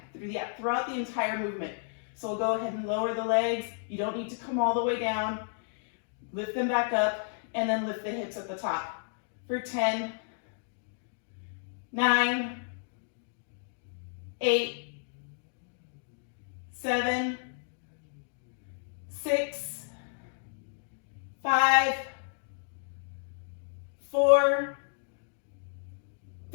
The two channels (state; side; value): silent; right; digital silence